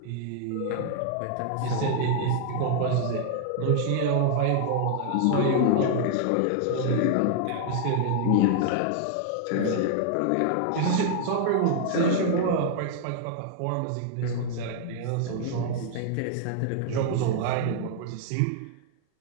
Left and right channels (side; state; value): both; different; correlation -0.01